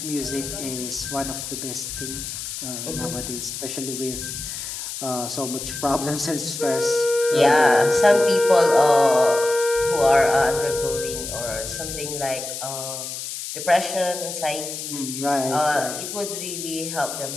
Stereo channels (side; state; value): left; noise; hiss, 7 dB below the sound